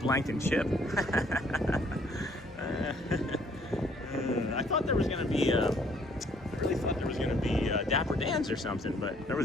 and chip. I thought there was going to be I really thought there was going to be Dapper Dans or something, but there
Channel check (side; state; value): both; normal; correlation 0.63